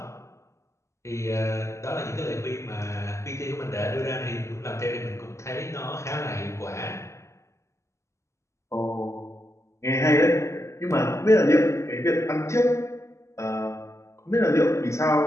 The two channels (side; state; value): right; late; 0.14 ms